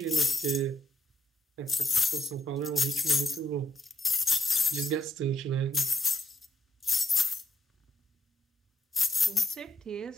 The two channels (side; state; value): both; normal; correlation 0.77